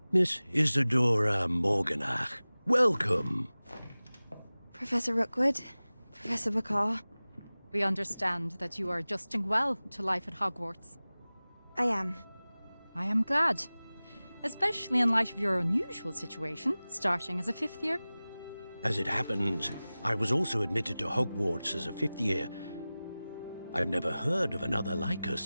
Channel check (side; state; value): both; inverted; correlation -0.98